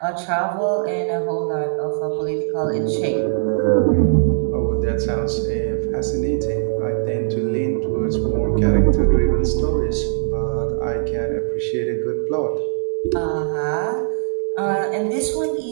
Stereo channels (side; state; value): left; silent; digital silence